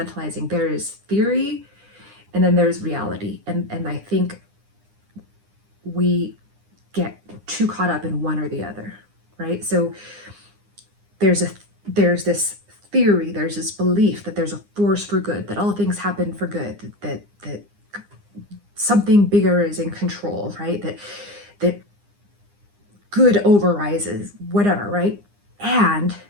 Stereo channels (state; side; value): late; left; 9.8 ms